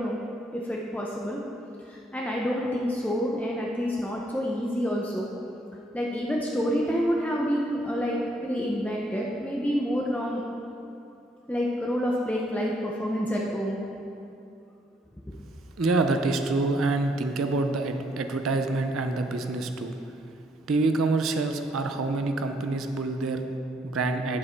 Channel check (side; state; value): both; normal; correlation 0.70